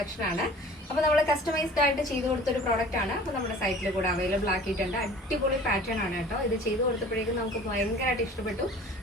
ആണ്. അപ്പോൾ നമ്മൾ കസ്റ്റമൈസ്ഡ് ആയിട്ട് ചെയ്തു കൊടുത്ത ഒരു പ്രോഡക്റ്റ് ആണ്. അപ്പോൾ നമ്മുടെ സൈറ്റിൽ കൂടെ അവൈലബിൾ ആക്കിയിട്ടുണ്ട്. അടിപൊളി പാറ്റേൺ ആണ് കേട്ടോ. ഇത് ചെയ്തു കൊടുത്തപ്പോഴേക്കും നമുക്ക് ഭയങ്കരമായിട്ട് ഇഷ്ടപ്പെട്ടു.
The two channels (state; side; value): normal; both; correlation 0.45